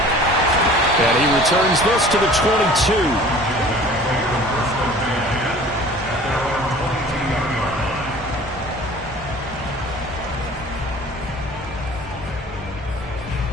And he returns this to the 22.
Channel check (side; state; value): both; normal; correlation 0.46